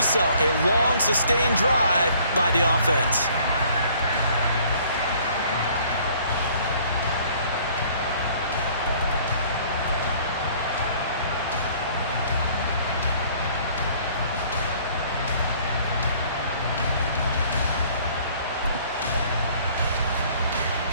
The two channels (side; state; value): both; inverted; correlation -0.57